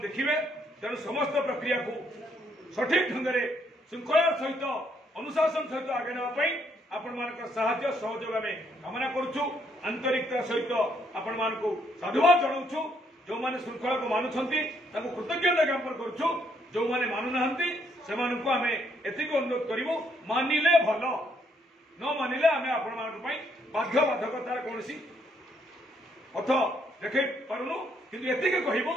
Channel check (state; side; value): normal; both; correlation 0.71